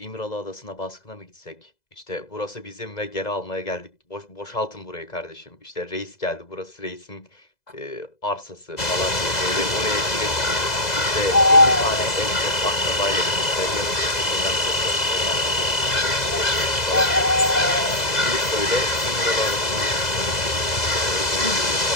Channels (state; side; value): late; right; 2.0 ms